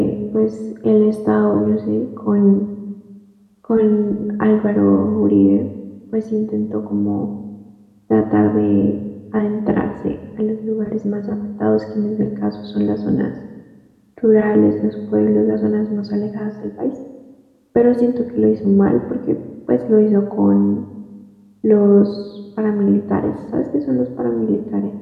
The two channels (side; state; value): both; identical; correlation 1.00